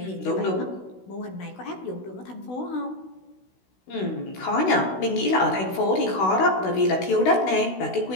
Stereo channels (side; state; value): right; late; 16 ms